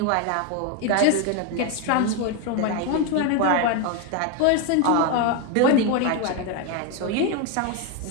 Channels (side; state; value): both; different; correlation 0.02